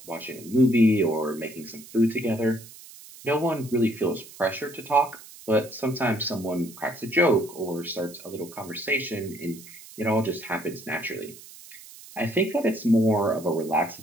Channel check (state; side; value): noise; right; hiss, 18 dB below the sound